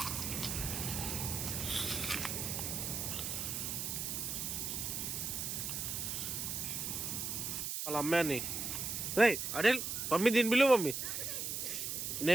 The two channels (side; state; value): right; noise; hiss, 3 dB below the sound